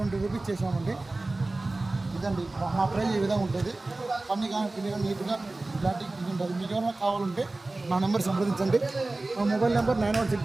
రూపీస్ చేసామండి. ఇదండి మా ప్రైజ్ ఈ విధంగా ఉంటుంది. పని కానీ పిల్లగా నీట్గా ఇలాంటి ఇది ఉంటుంది. మీకు ఏమైనా కావాలంటే నా నెంబర్ సంప్రదించండి. మా మొబైల్ నెంబర్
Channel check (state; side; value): quieter; left; 3.0 dB